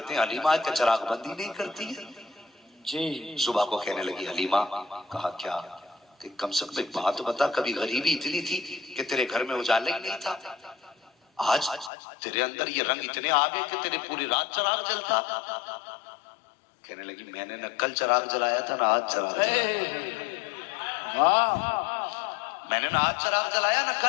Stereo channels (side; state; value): right; drops out; at 11.9 s